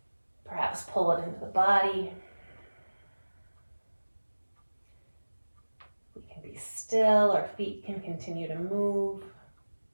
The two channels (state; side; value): inverted; both; correlation -1.00